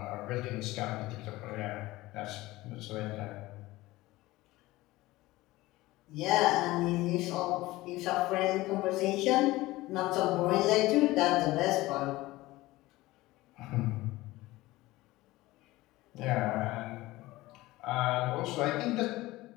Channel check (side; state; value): right; quieter; 18.7 dB